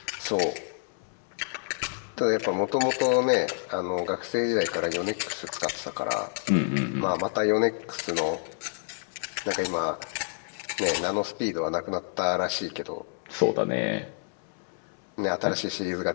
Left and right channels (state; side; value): silent; right; 59 dB below the other